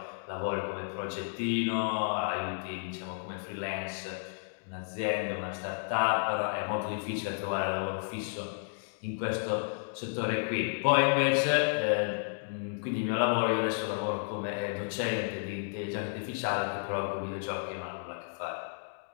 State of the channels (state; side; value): silent; right; digital silence